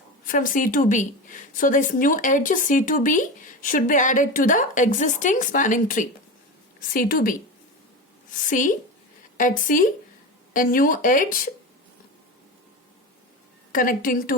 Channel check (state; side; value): normal; both; correlation 0.24